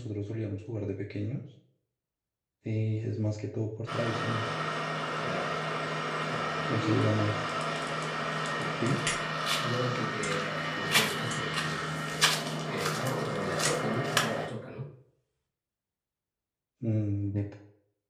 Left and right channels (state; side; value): identical; both; correlation 1.00